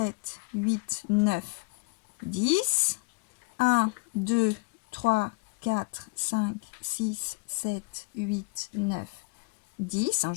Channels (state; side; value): quieter; right; 29.2 dB